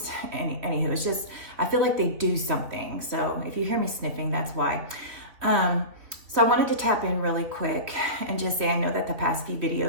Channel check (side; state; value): left; late; 3.2 ms